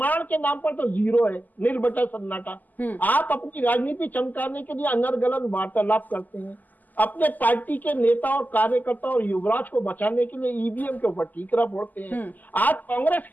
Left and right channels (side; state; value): right; late; 0.083 ms